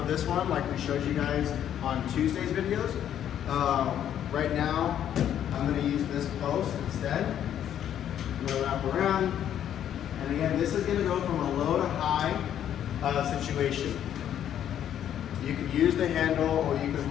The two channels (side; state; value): right; quieter; 10.2 dB